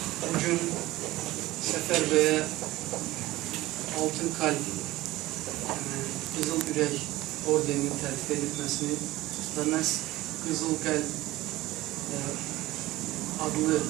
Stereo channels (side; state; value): left; quieter; 17.7 dB